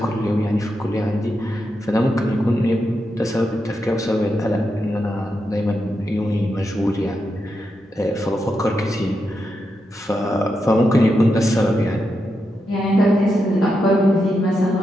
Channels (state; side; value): normal; both; correlation 0.85